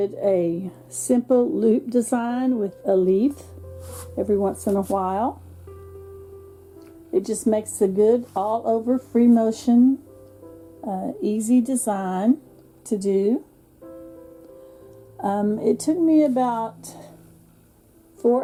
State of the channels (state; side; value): identical; both; correlation 1.00